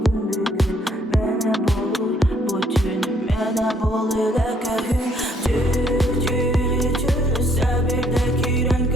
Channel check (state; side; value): normal; both; correlation 0.66